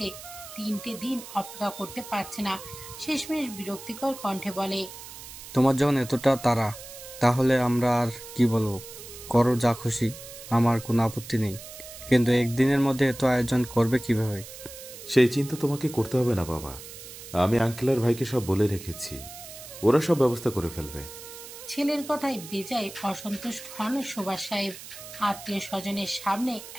৩টে দিন অপেক্ষা করতে পারছে না। শেষমেশ বিরক্তিকর কণ্ঠে বলে, তোমার যখন এতটা তাড়া, তাহলে আমরা আর কি বলবো? করো যা খুশি, আমার কোনো আপত্তি নেই। কিন্তু একদিনের মধ্যে এত আয়োজন করবে কিভাবে? সেই চিন্তা তোমাকে করতে হবে না বাবা, আমি আঙ্কেল আর ভাইকে সব বলে রেখেছি, ওরা সব ব্যবস্থা করে ফেলবে। ছেলের কথায় বেজায় অসন্তুষ্ট হন সুভাষ সাহেব। আত্মীয় স্বজনের সামনে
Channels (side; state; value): right; noise; hiss, 14 dB below the sound